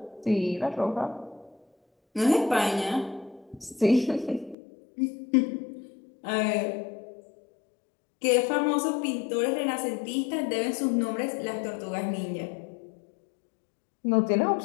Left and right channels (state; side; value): drops out; right; at 4.5 s